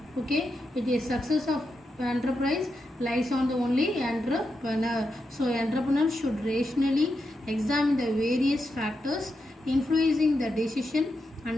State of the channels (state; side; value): normal; both; correlation 0.86